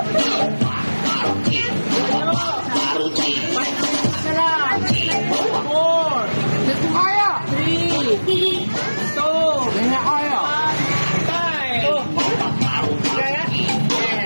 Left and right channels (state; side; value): inverted; both; correlation -1.00